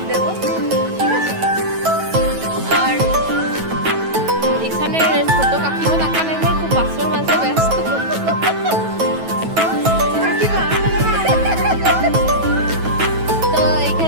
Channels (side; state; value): left; late; 9.2 ms